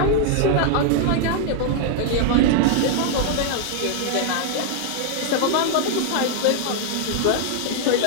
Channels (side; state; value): both; different; correlation 0.00